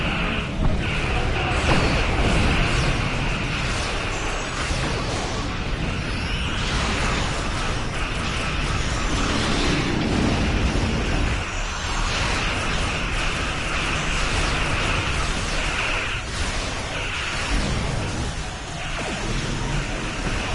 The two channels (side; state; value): both; identical; correlation 1.00